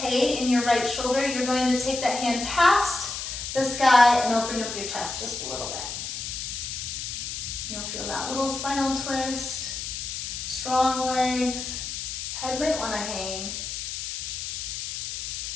in your right shoulder, you're going to take that hand past the sky and open up your chest just a little bit. You'll feel that little spinal twist, strong legs, head might want to hang.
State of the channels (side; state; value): left; noise; hiss, 5 dB below the sound